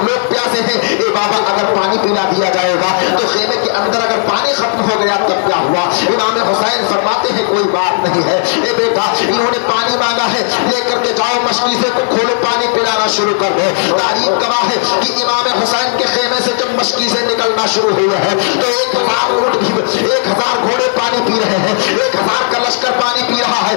لوگ پیاسے ہیں، اے بابا اگر پانی پلا دیا جائے گا تو خیمے کے اندر اگر پانی ختم ہو گیا تب کیا ہوا؟ امام حسین فرماتے ہیں کوئی بات نہیں ہے، اے بیٹا انہوں نے پانی مانگا ہے، لے کر کے جاؤ مشکیزے کو کھولو پانی پلانا شروع کر دو۔ تاریخ گواہ ہے کہ امام حسین کے خیمے سے جب مشکیزیں نکلنا شروع ہوئے ہیں تو 1000 اونٹ بھی 1000 گھوڑے پانی پی رہے ہیں، 1000 کا لشکر پانی پی رہا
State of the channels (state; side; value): silent; right; digital silence